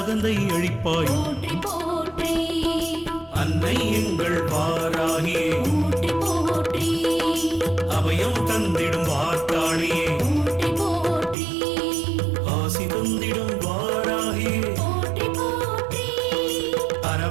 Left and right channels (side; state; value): left; drops out; at 11.4 s